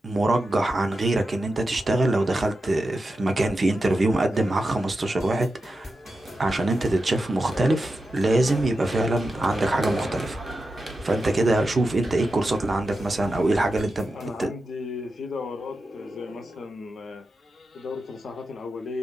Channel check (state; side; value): normal; both; correlation 0.90